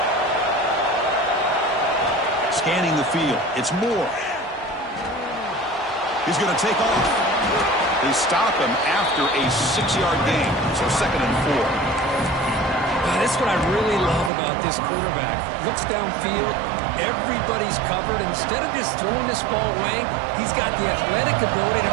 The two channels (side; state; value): left; drops out; at 14.3 s